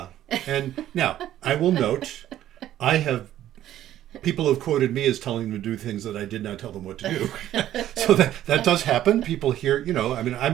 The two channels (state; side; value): quieter; left; 12.4 dB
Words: And now, I will note, people have quoted me as telling them to do things that I did not tell them what to do. So that does happen. People hear,